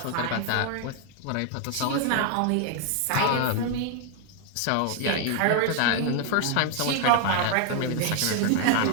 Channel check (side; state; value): both; different; correlation 0.00